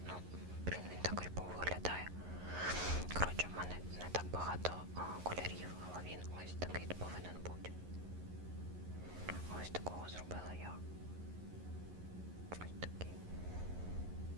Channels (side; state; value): left; late; 11 ms